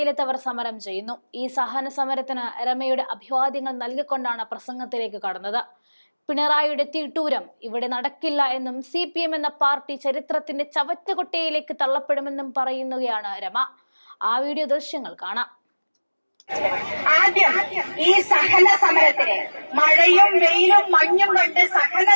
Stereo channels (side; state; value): both; inverted; correlation -1.00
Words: സമരം ചെയ്യുന്നു. ഈ സഹന സമരത്തിന് രമയുടെ അഭിവാദ്യങ്ങൾ നൽകിക്കൊണ്ടാണ് പ്രസംഗത്തിലേക്ക് കടന്നത്. പിണറായിയുടെ തീട്ടൂരം ഇവിടെ നടക്കില്ല എന്നും CPM എന്ന പാർട്ടി ചരിത്രത്തിന്റെ ചവറ്റുകൊട്ടയിലേക്ക് തള്ളപ്പെടുമെന്നും പറയുകയാണ് രമ. ആ വീഡിയോ ദൃശ്യങ്ങൾ കാണാം. ആദ്യം ഈ സഹന സമരത്തിന് മഴയും വെയിലും മഞ്ഞും കൊണ്ട് സഹന